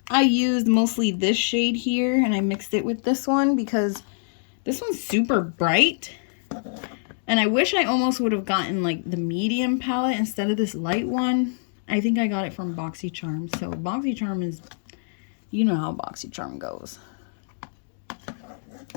I used mostly this shade here and I mixed it with this one because this one's super bright. And I wish I almost would have gotten like the medium palette instead of this light one. I think I got it from BoxyCharm. So BoxyCharm is, you know how BoxyCharm goes.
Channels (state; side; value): silent; right; digital silence